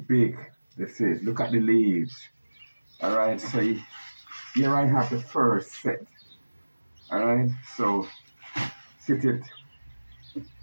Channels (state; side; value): inverted; both; correlation -1.00